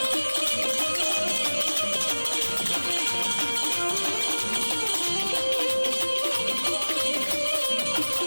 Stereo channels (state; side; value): inverted; both; correlation -1.00